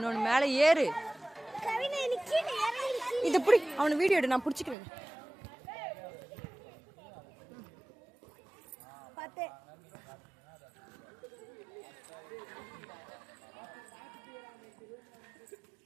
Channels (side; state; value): left; drops out; at 4.8 s